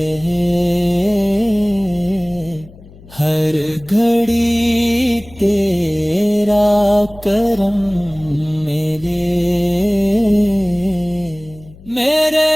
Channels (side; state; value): left; noise; hum, 22 dB below the sound